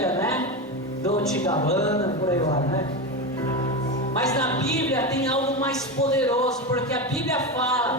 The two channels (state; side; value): normal; both; correlation 0.18